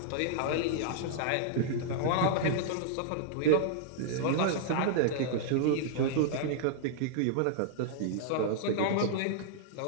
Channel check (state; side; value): different; both; correlation -0.01